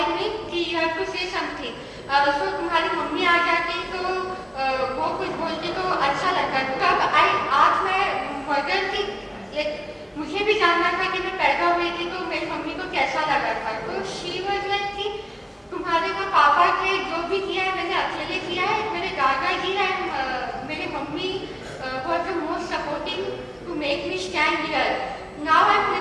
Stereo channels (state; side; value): identical; both; correlation 1.00